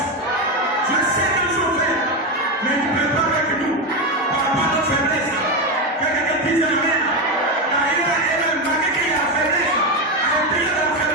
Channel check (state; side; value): normal; both; correlation 0.12